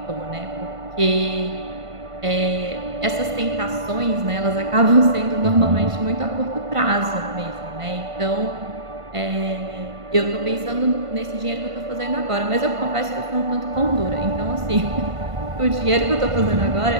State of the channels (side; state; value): left; late; 1.5 ms